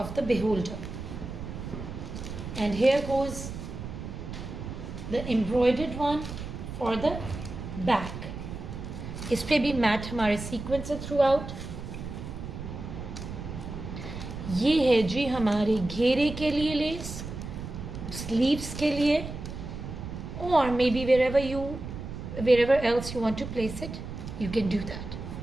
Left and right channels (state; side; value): noise; right; rumble, 8 dB below the sound